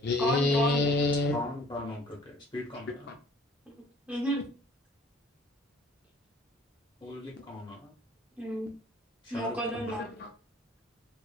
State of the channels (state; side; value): normal; both; correlation 0.54